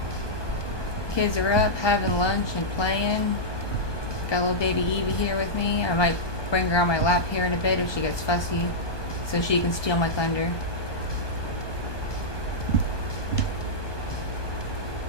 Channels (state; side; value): late; right; 1.2 ms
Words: Kids are up, having lunch and playing. Got little baby EEVEE here with me. I might bring her on my lap here in a bit if she gets fussy, so she can steal my thunder.